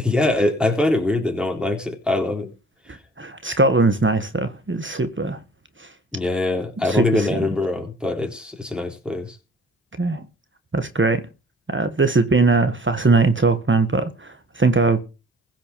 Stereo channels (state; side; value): normal; both; correlation 0.51